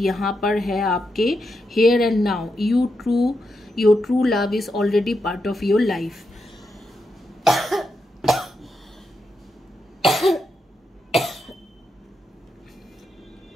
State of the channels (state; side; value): normal; both; correlation 0.84